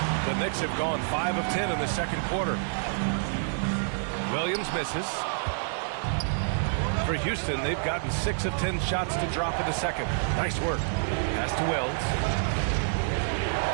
The Knicks have gone 5 of 10 in the second quarter. Williams misses. For Houston, they've gotten 6 of 10 shots to drop in the second. Nice work. Pass to Wells.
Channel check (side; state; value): left; silent; 59 dB below the other